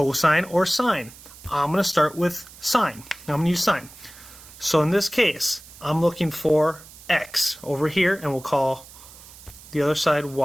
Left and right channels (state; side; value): noise; right; hiss, 19 dB below the sound